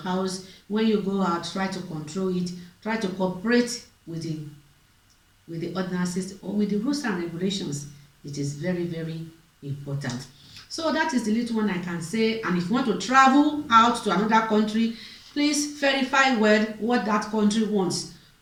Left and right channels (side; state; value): both; identical; correlation 1.00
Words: house, when you go out, try to control it. Try to cooperate with the ordinances or with the rules and regulations. It is very important. So that is the little one I can say. And if you want to travel out to another country, please verify well what that country wants,